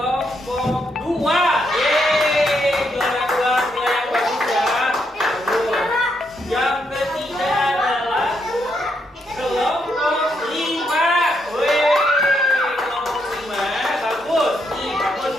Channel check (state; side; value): normal; both; correlation 0.78